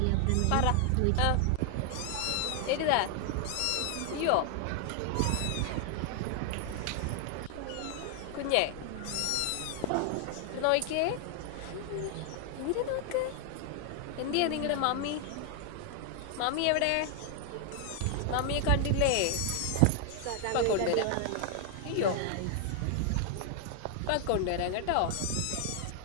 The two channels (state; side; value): different; both; correlation 0.00